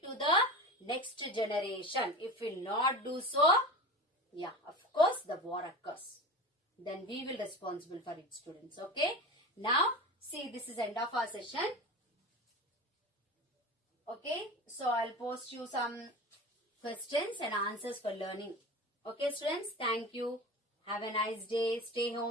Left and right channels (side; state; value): both; normal; correlation 0.30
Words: to the next generation. If we will not do so, yeah, of course, the war occurs. Then we will be responsible for it, students. Okay. Now, see, this is end of our session. Okay. So, I'll post you some questions and answers for learning. Okay, students. Thank you. Have a nice day. Stay